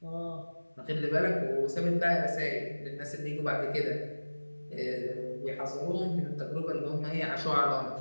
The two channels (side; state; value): both; inverted; correlation -1.00